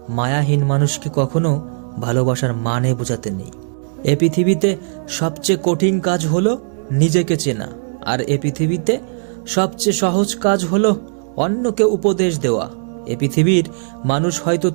মায়াহীন মানুষকে কখনো ভালোবাসার মানে বোঝাতে নেই। এ পৃথিবীতে সবচেয়ে কঠিন কাজ হলো নিজেকে চেনা, আর এ পৃথিবীতে সবচেয়ে সহজ কাজ হলো অন্যকে উপদেশ দেওয়া। এ পৃথিবীর মানুষ হয়তো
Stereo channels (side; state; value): left; silent; 62 dB below the other